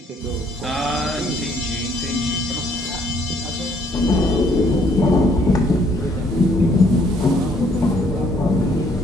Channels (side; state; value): both; normal; correlation 0.65